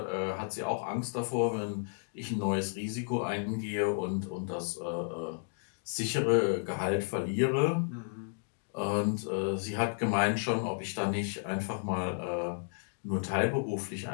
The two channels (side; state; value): right; silent; digital silence